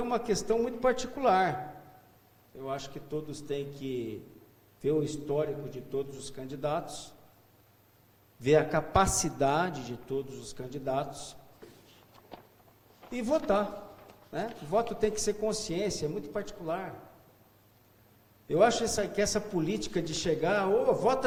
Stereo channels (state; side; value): identical; both; correlation 1.00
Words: é uma questão muito particular. Eu acho que todos têm que ver o histórico de todos os candidatos, ver a capacidade de todos os candidatos e votar, né? O voto tem que ser consciência, é muito particular. Eu acho que essa política de chegar,